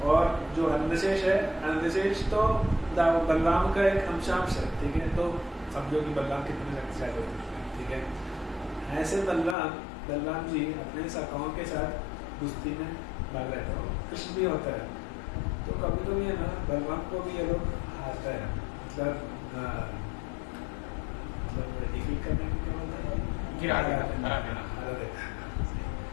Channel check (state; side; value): drops out; right; at 9.6 s